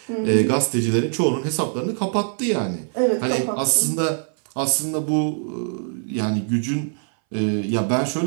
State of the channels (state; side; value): silent; left; 61 dB below the other